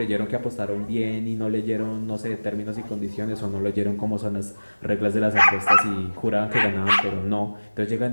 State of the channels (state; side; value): inverted; both; correlation -1.00